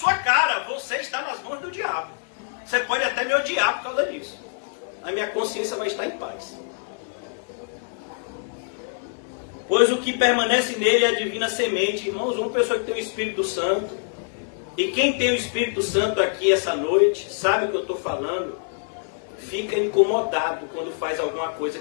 cara, você está nas mãos do diabo. Você pode até me odiar por causa disso. A minha consciência vai estar em paz. Pois o que permanece nele é a divina semente. Irmãos, uma pessoa que tem o Espírito Santo, e quem tem o Espírito Santo aqui essa noite, sabe o que eu estou falando, fica incomodado quando faz alguma coisa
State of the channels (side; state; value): right; silent; 62 dB below the other